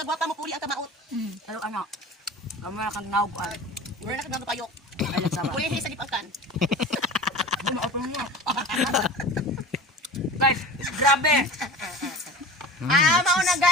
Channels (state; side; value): normal; both; correlation 0.36